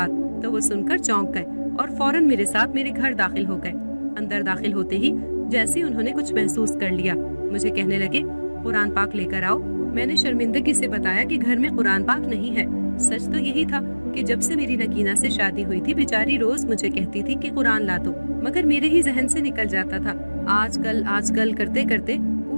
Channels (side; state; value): both; inverted; correlation -1.00